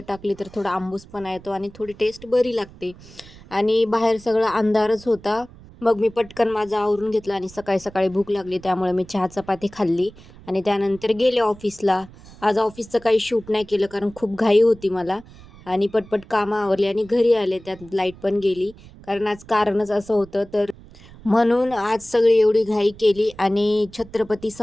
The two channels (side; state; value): right; noise; rumble, 21 dB below the sound